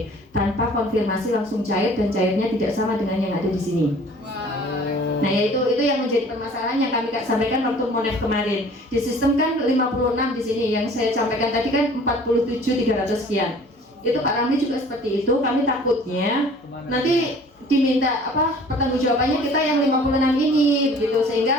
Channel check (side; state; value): both; normal; correlation 0.50